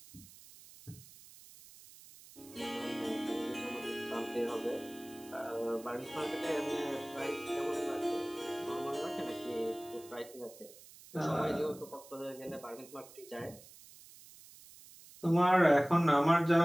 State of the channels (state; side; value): noise; right; hiss, 20 dB below the sound